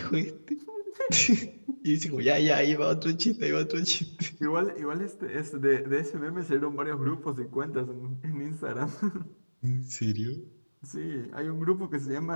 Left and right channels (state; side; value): inverted; both; correlation -1.00